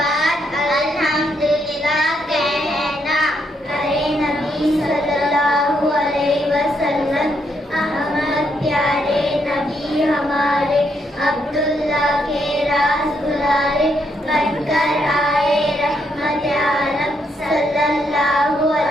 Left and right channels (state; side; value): normal; both; correlation 0.76